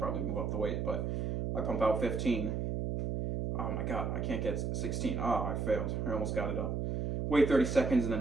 move up the weight, but I pump out 15. Oh my god, I can't get 16. Oh, I failed. I almost got it up. Wait 30 seconds and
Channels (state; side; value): noise; right; hum, 1 dB below the sound